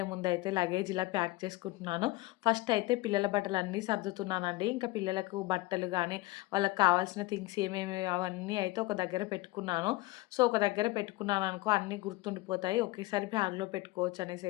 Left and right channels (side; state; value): right; quieter; 19.8 dB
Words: ముందయితే లగేజ్ ఇలా ప్యాక్ చేసుకుంటున్నాను. ఫస్ట్ అయితే పిల్లల బట్టలన్నీ సర్దుతున్నానండి. ఇంకా పిల్లలకు బట్టలు గానీ, వాళ్ళకి కావాల్సిన థింగ్స్ ఏమేమి అవన్నీ అయితే ఒక దగ్గర పెట్టుకున్నాను. సో, ఒక దగ్గర పెట్టుకున్నాననుకో అన్నీ గుర్తుండిపోతాయి. ఒకేసారి బ్యాగ్‌లో పెట్టుకోవచ్చు అనేసి